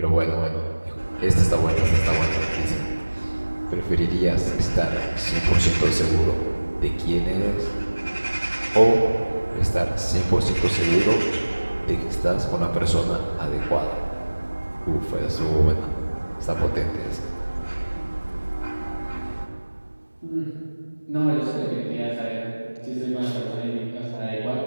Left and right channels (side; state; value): both; inverted; correlation -1.00